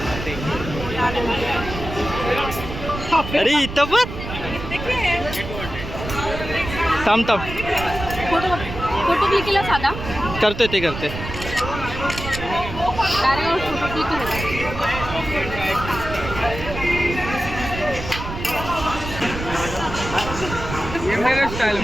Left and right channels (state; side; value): noise; right; rumble, 8 dB below the sound